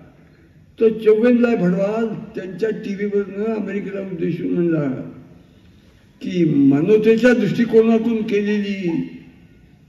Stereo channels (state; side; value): identical; both; correlation 1.00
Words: तो चौगेनलाल भडवाल त्यांच्या टीव्हीवरनं अमेरिकेला उद्देशून म्हणला की मानवतेच्या दृष्टिकोनातून केलेली